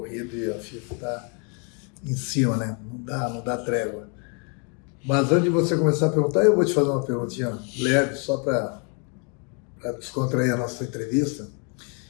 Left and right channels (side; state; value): right; quieter; 36.7 dB